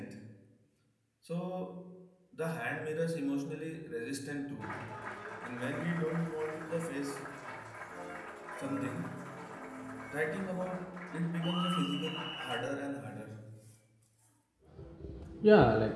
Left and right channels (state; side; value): identical; both; correlation 1.00